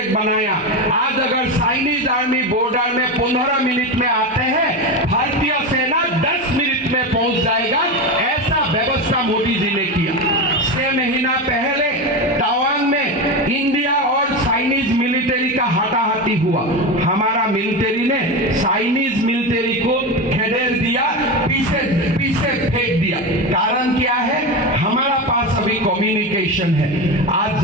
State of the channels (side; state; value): both; normal; correlation 0.19